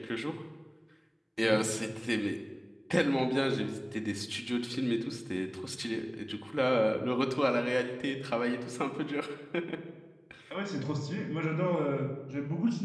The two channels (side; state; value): both; identical; correlation 1.00